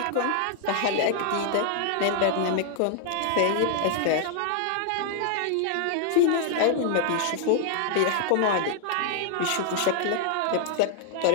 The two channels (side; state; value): both; different; correlation 0.00